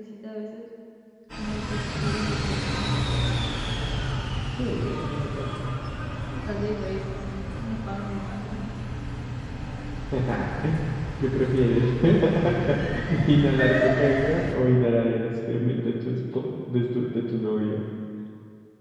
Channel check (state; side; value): identical; both; correlation 1.00